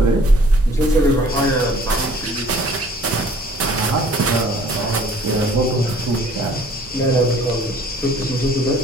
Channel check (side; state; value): both; normal; correlation 0.54